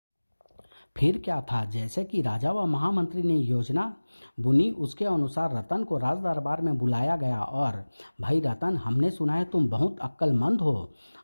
फिर क्या था, जैसे कि राजा व महामंत्री ने योजना बुनी उसके अनुसार रतन को राज दरबार में बुलाया गया। और भाई रतन, हमने सुना है तुम बहुत अक्लमंद हो,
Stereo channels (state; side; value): inverted; both; correlation -1.00